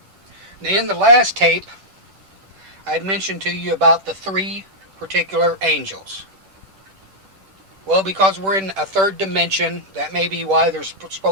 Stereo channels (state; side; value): late; left; 10 ms